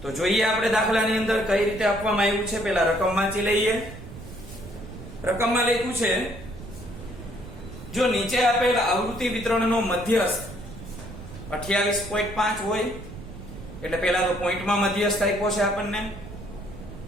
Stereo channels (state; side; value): noise; right; rumble, 13 dB below the sound